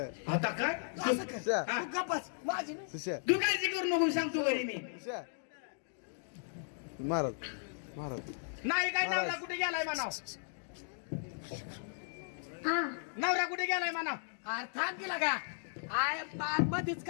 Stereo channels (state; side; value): silent; right; digital silence